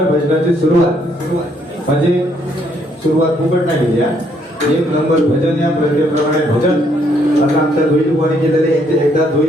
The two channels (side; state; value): both; normal; correlation 0.69